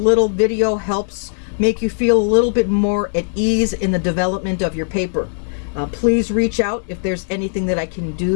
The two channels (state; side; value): silent; right; 67 dB below the other